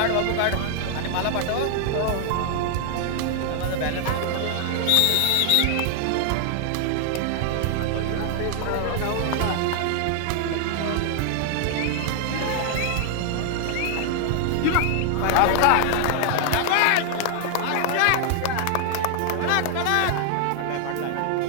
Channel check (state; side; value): different; both; correlation 0.00